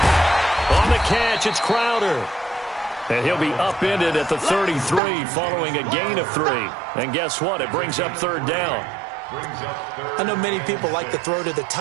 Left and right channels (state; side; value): drops out; left; at 5.0 s